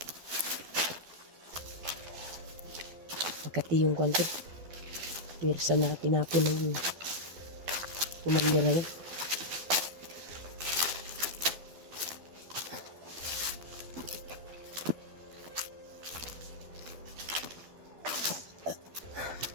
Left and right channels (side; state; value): left; late; 12 ms